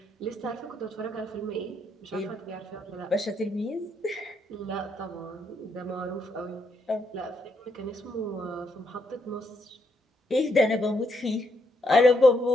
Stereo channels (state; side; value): normal; both; correlation 0.76